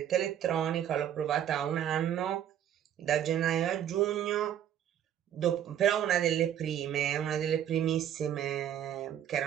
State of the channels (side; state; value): left; quieter; 10.3 dB